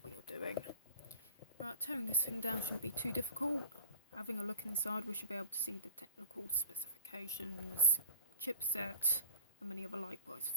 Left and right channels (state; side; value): inverted; both; correlation -0.37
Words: we are doing. Right, tearing this thing down shouldn't be too difficult. Having a look inside, we should be able to see the technical specifications, chipset, and many other likewise